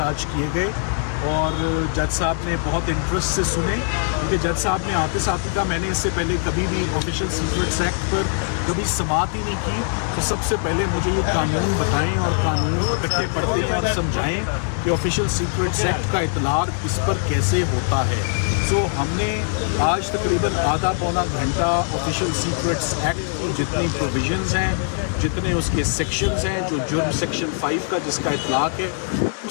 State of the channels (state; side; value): silent; right; digital silence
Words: आज किए गए और जज साहब ने बहुत इंटरेस्ट से सुने, क्योंकि जज साहब ने आते साथ ही कहा मैंने इससे पहले कभी भी ऑफिशियल सीक्रेट्स एक्ट पर कभी समाअत ही नहीं की, तो सबसे पहले मुझे ये कानून बताएं और कानून इकट्ठे पढ़ते हैं और समझाएं कि ऑफिशियल सीक्रेट्स एक्ट का इतलाक इस पर कैसे होता है। सो हमने आज तकरीबन आधा पौना घंटा ऑफिशियल सीक्रेट्स एक्ट की जितनी प्रोविजंस हैं, जितने उसके सेक्शंस हैं, जो जुर्म सेक्शन 5 का जिसका इतलाक है,